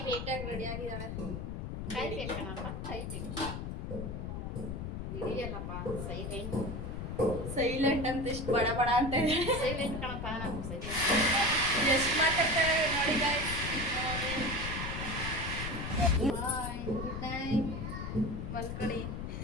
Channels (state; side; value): noise; left; rumble, 5 dB below the sound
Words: ನೀಟಾಗಿ ರೆಡಿ ಆಗಿದ್ದಾಳೆ. ಕಾಯ್ಬೇಕು ಕಣಪ್ಪ, ಕಾಯ್ಬೇಕು. ಹಿಡಿಯಲ್ಲಪ್ಪ, ಸೈಲೆಂಟ್ ಸೈಲೆಂಟ್ ಅಂತ ಇಷ್ಟು ಬಡ ಬಡ ಅಂತ ಇದೆ. ಸೈಲೆಂಟ್ ಕಣಪ್ಪ, ನಾನು ಸೈಲೆಂಟ್. ಎಷ್ಟು ಮಾತಾಡ್ತಾರೆ ನೋಡಿ ಗಾಯ್ಸ್. ಬಾಯ್, ಗುಡ್ ನೈಟ್. ಮಲ್ಕಡಿ.